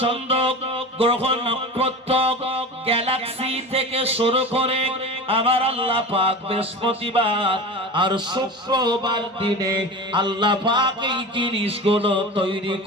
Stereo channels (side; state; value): both; normal; correlation 0.31